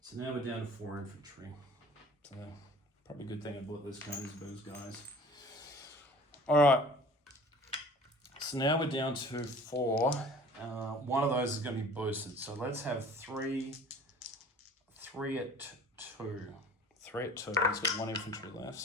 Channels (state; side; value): normal; both; correlation 0.46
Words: So now we're down to 4 infantry. So probably a good thing I bought this Königsberg guys. All right. So now we're down to 4. One of those is going to be boosted. So let's have 3 at 2. 3 at 2. He's got 1 infantry left.